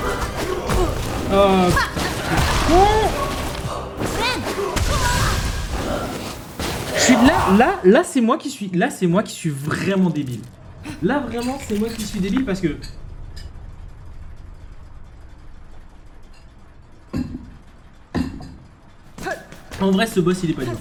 Oh, je suis là c'est moi qui suis vraiment débile. Là vraiment c'est moi qui suis débile parce que en vrai ce boss il est pas dur.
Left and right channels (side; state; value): both; identical; correlation 1.00